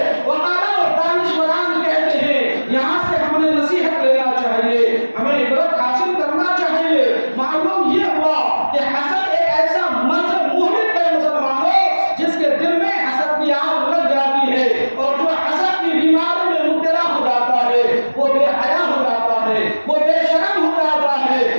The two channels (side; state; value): both; inverted; correlation -1.00